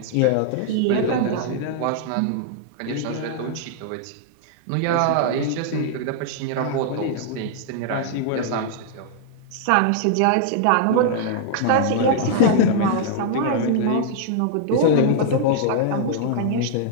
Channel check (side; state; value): both; different; correlation -0.01